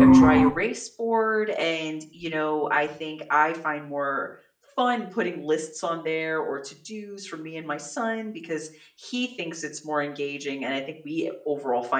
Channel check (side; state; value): both; identical; correlation 1.00